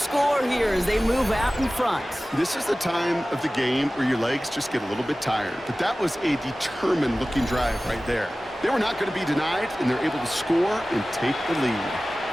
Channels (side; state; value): both; normal; correlation 0.97